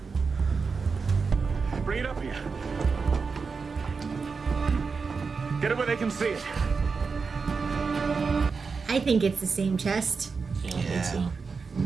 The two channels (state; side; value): quieter; left; 5.0 dB